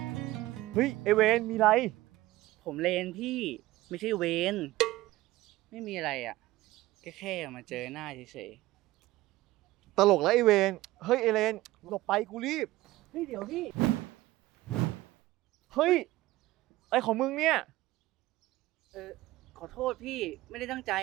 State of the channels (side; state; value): left; quieter; 17.6 dB